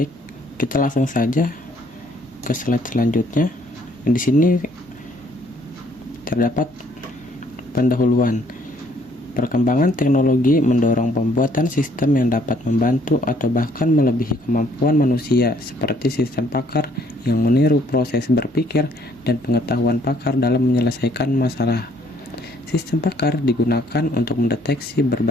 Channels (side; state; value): both; normal; correlation 0.64